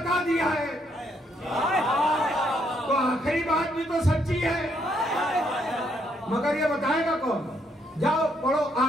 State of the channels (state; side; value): normal; both; correlation 0.73